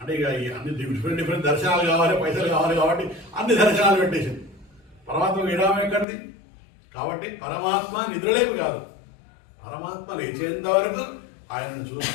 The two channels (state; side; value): drops out; right; at 6.1 s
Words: ఇక అన్ని డిఫరెంట్ దర్శనాలు కావాలి, పైసలు కావాలి కాబట్టి అన్ని దర్శనాలు పెట్టేసింది. పరమాత్మ విరామం ఎక్కడిది? కాబట్టి పరమాత్మ నిద్రలేపు కాదు, పరమాత్మ లేచేంత వరకు ఆయనను